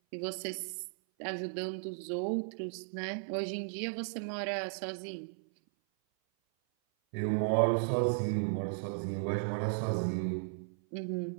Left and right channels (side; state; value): left; silent; 54 dB below the other